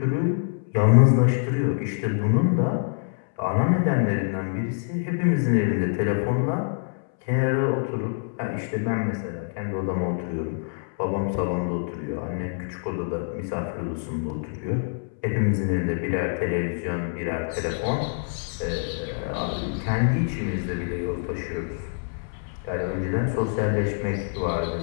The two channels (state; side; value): silent; right; 61 dB below the other